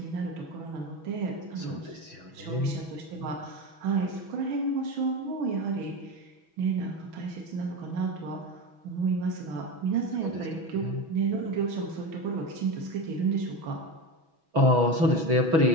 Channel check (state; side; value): late; left; 6.2 ms